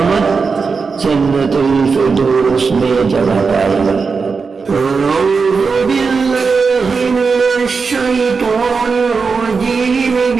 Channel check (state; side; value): quieter; left; 4.9 dB